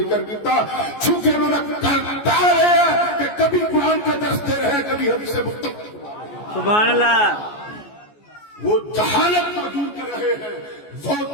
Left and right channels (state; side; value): late; right; 14 ms